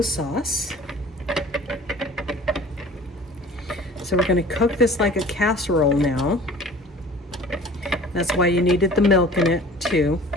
sauce. So we're gonna cook this like a casserole now. That's why you needed the milk in it too.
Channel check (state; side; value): normal; both; correlation 0.46